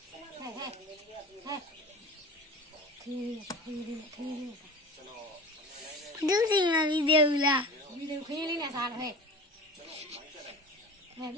ဒုစီမဗီဒီယိုလားဗီဒီယိုခင်းလေးနဲ့စားတယ်ဟဲ့ပ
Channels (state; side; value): normal; both; correlation 0.35